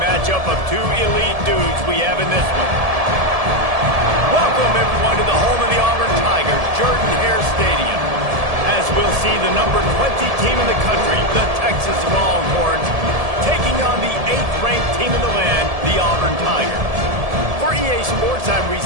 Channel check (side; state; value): left; late; 1.7 ms